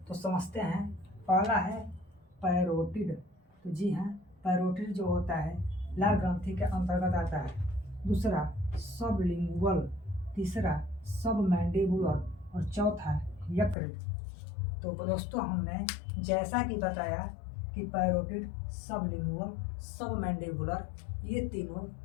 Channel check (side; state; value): right; drops out; at 13.8 s